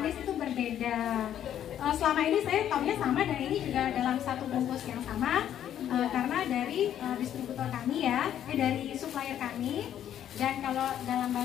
itu berbeda. Selama ini saya taunya sama dan ini juga dalam satu bungkus yang sama karena dari distributor kami ya, dari supplier kami. Dan kalau dalam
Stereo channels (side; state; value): right; quieter; 10.5 dB